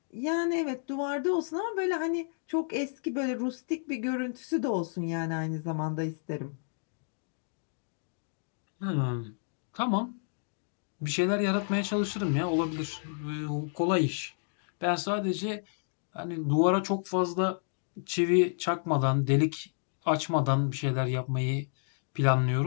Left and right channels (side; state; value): right; silent; digital silence